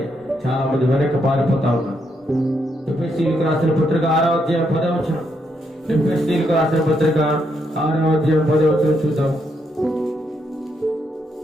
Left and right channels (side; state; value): both; normal; correlation 0.78